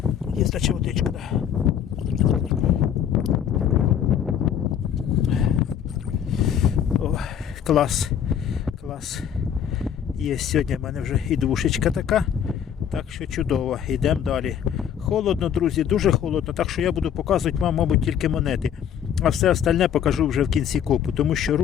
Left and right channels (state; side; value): quieter; right; 8.9 dB